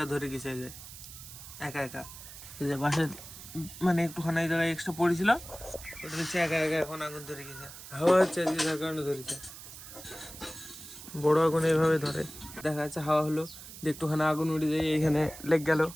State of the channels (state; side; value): noise; right; hiss, 14 dB below the sound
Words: ধরে গেছে, যে একা একা এই যে বাসে মানে একটুখানি এই জায়গায় এক্সট্রা পড়েছিল, ওটা হচ্ছে একা একা এখন আগুন ধরে গেছে। হাওয়া হচ্ছে যার কারণে ধরেছে, বড় আগুন এইভাবে ধরে। দেখা যাচ্ছে হাওয়া হলো যে একটুখানি আগুন উঠে যায়, এইখানে লেগ গেল,